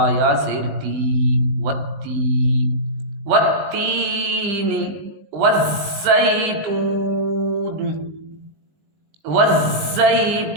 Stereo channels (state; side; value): late; left; 20 ms